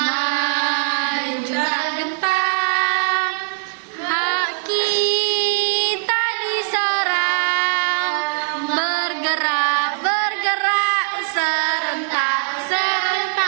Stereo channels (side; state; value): left; silent; 65 dB below the other